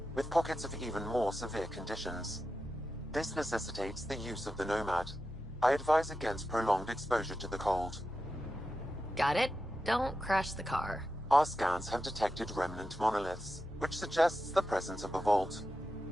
with pockets of even more severe conditions. This necessitates the use of the Nomad. I advise against prolonged exposure to the cold. Got it. Don't crash the car. Our scans have detected remnant monoliths, which suggests the presence of a vault.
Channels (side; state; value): both; normal; correlation 0.90